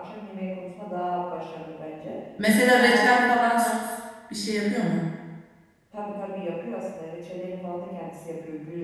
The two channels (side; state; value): both; identical; correlation 1.00